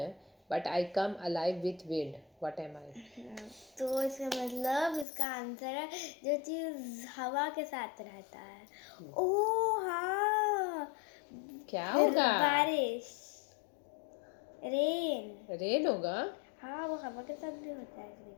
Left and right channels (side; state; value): right; drops out; at 5.1 s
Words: But I come alive with wind. What am I? तो इसका मतलब इसका आंसर है जो चीज हवा के साथ रहता है। ओह हाँ, क्या फिर होगा? बारिश, रेन। रेन होगा। हाँ, वो हवा के साथ भी होता है कभी